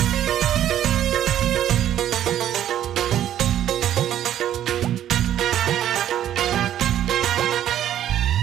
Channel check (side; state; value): left; quieter; 11.3 dB